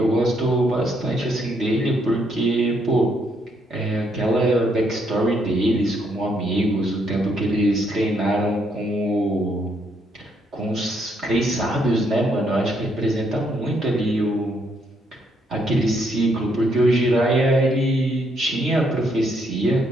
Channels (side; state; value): both; normal; correlation 0.73